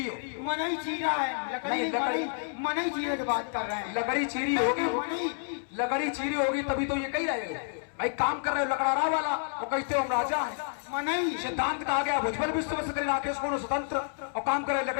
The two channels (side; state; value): right; silent; 58 dB below the other